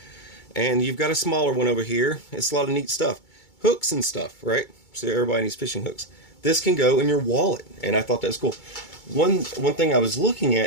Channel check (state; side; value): late; right; 2.2 ms